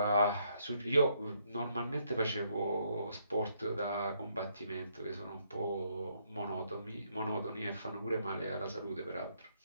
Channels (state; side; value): inverted; both; correlation -0.72